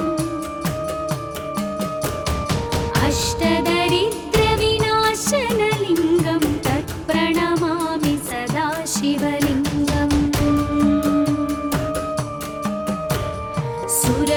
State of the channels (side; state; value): both; identical; correlation 1.00